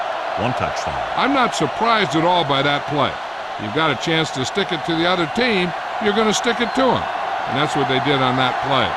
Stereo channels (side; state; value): both; identical; correlation 1.00